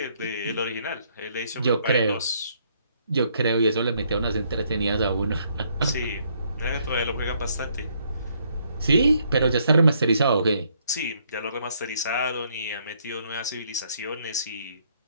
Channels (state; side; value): inverted; both; correlation -0.70